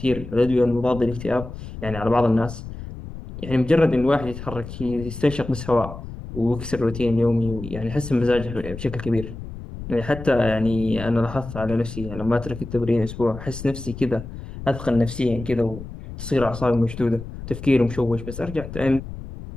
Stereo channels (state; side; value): noise; left; rumble, 11 dB below the sound